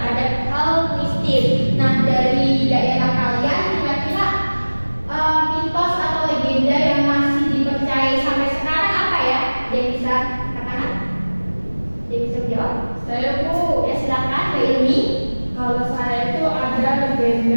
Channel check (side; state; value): both; inverted; correlation -1.00